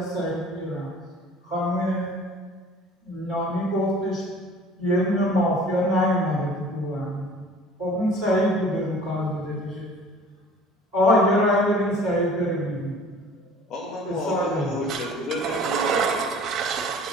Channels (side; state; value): both; normal; correlation 0.48